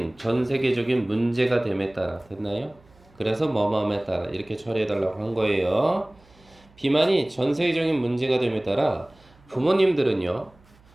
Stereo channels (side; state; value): right; noise; hum, 29 dB below the sound